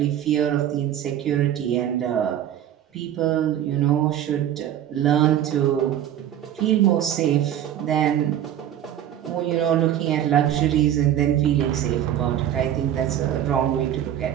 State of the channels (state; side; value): quieter; left; 11.0 dB